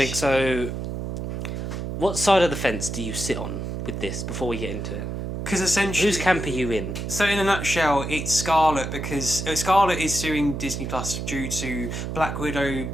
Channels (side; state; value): right; noise; hum, 5 dB below the sound